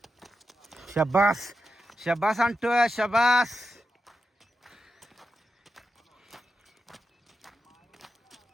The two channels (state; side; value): normal; both; correlation 0.89